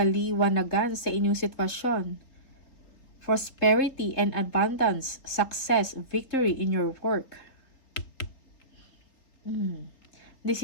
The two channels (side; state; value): right; late; 3.8 ms